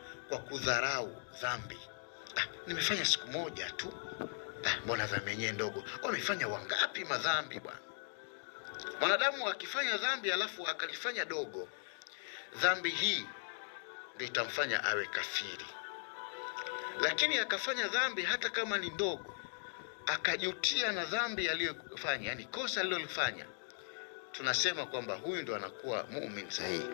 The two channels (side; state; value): right; silent; digital silence